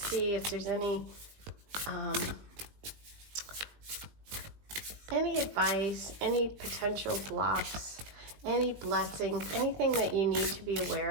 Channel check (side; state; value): left; late; 20 ms